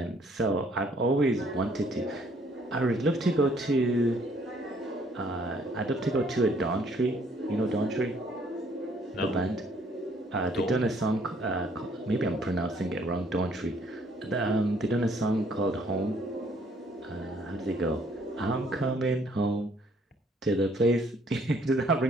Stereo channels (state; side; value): normal; both; correlation 0.63